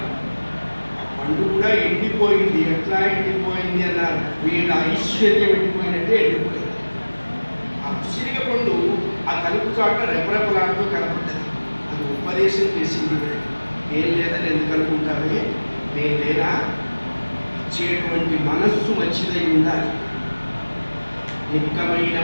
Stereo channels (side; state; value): both; inverted; correlation -1.00